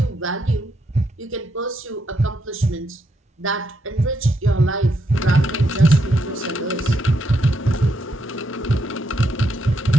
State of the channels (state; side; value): normal; both; correlation 0.79